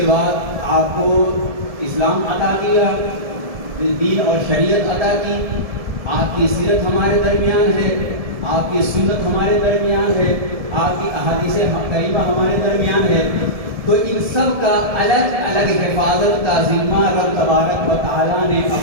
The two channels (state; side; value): late; left; 1.7 ms